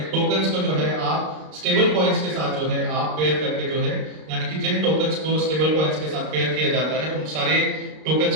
टोकन्स को जो है आप स्टेबल कॉइन्स के साथ जो है आप पेयर करके जो है, यानी कि जिन टोकन्स को स्टेबल कॉइन्स के साथ पेयर किया जाता है उन सारे टोकन्स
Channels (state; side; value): late; left; 32 ms